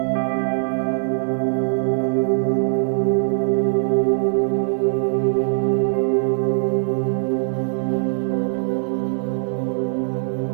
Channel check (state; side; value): silent; left; 55 dB below the other